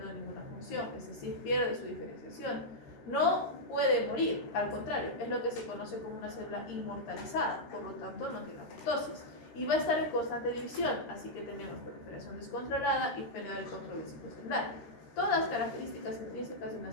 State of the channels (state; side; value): late; right; 13 ms